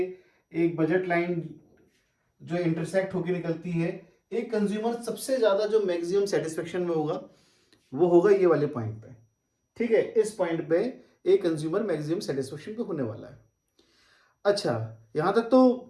एक बजट लाइन जो इंटरसेक्ट होकर निकलती है, एक कंज्यूमर सबसे ज्यादा जो मैक्सिमम सेटिस्फेक्शन में होगा वो होगा ये वाले पॉइंट पे। ठीक है, इस पॉइंट पे एक कंज्यूमर मैक्सिमम सेटिस्फेक्शन पे होने वाला है। अच्छा, यहां तक तो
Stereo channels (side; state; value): both; identical; correlation 1.00